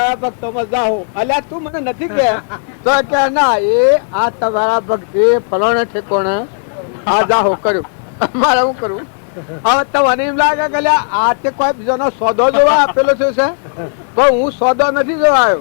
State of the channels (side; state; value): right; silent; 71 dB below the other